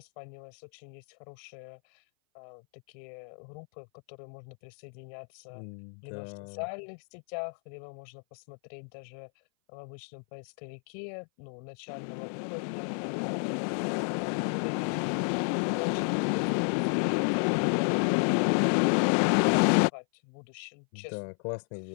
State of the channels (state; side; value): silent; right; 57 dB below the other